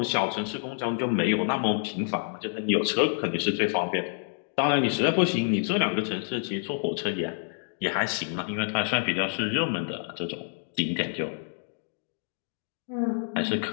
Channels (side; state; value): right; silent; 59 dB below the other